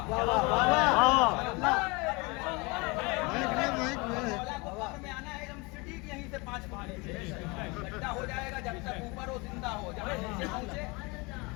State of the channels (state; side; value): quieter; right; 27.1 dB